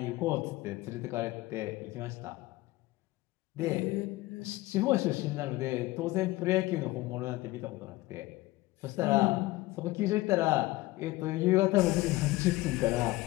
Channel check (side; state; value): right; quieter; 19.0 dB